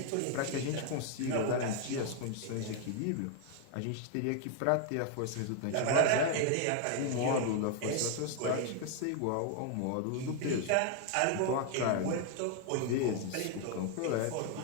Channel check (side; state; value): both; different; correlation 0.00